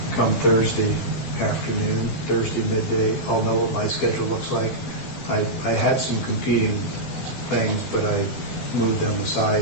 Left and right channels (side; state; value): right; late; 12 ms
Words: come Thursday afternoon, Thursday midday, I'll know what my schedule looks like. I had some competing things, but I moved them